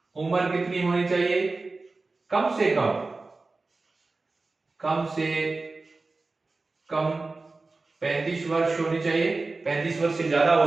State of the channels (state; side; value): quieter; left; 3.6 dB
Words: उम्र कितनी होनी चाहिए? कम से कम 35 वर्ष होनी चाहिए। 35 वर्ष से ज्यादा हो